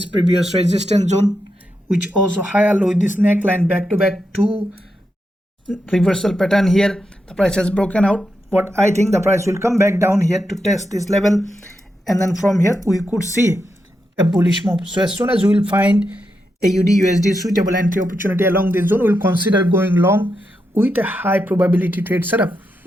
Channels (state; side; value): normal; both; correlation 0.85